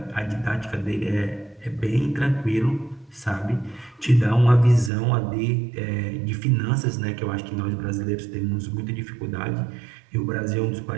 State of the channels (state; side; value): drops out; left; at 4.9 s